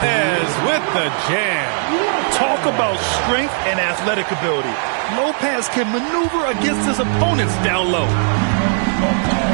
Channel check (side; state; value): left; silent; digital silence